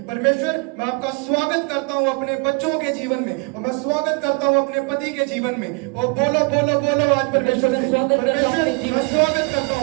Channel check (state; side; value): quieter; left; 31.3 dB